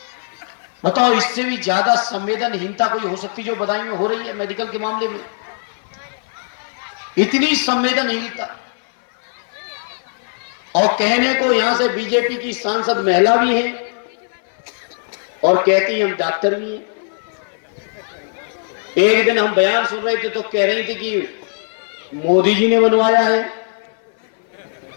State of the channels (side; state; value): right; silent; 59 dB below the other